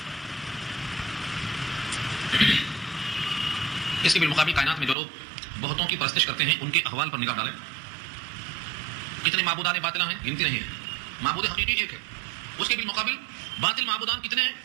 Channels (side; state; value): left; drops out; at 5.0 s